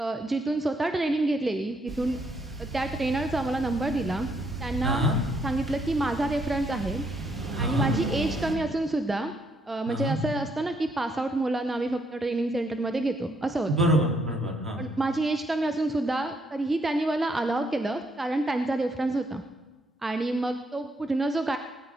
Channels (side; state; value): both; normal; correlation 0.73